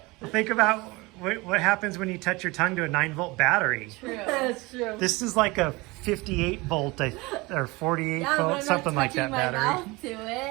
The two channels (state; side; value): quieter; left; 23.5 dB